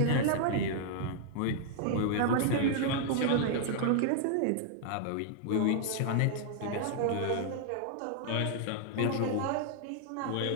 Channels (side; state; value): both; different; correlation -0.01